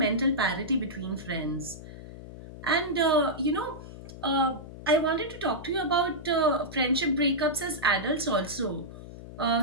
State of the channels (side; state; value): left; noise; hum, 14 dB below the sound